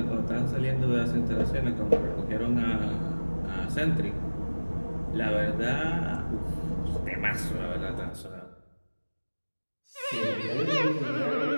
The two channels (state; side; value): inverted; both; correlation -1.00